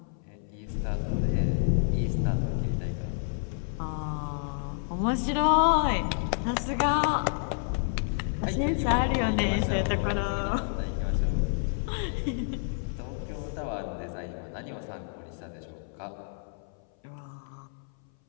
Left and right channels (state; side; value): silent; right; 58 dB below the other